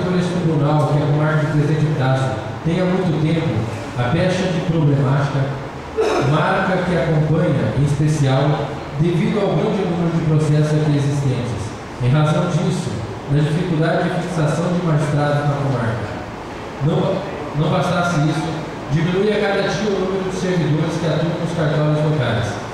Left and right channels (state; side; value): identical; both; correlation 1.00